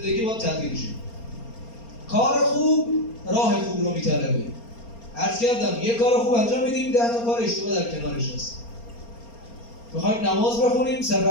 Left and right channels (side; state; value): right; late; 4.3 ms